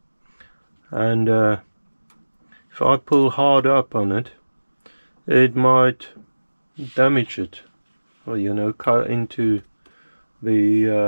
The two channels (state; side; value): inverted; both; correlation -1.00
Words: and if I pull hard up on it, it might damage it, or, you know, cut into the